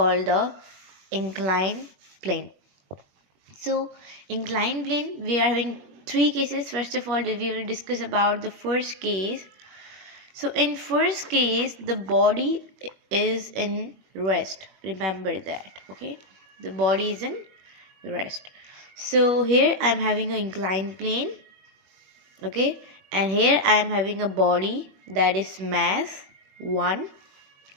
the inclined plane. So inclined plane, we are having three cases. First of all, we will discuss about the first case. So in first case, the body is in rest. Remember that. Okay, the body is in rest. So here I am having an inclined plane. Okay, and here I am having a body that is mass 1,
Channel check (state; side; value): late; left; 21 ms